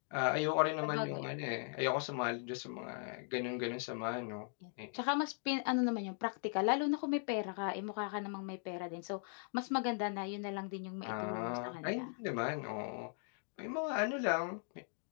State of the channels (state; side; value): silent; right; 52 dB below the other